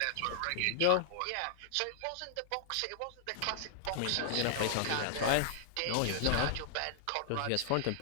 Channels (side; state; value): both; different; correlation -0.01